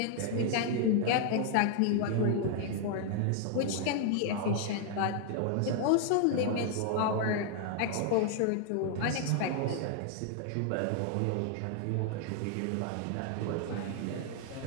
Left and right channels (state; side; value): different; both; correlation 0.00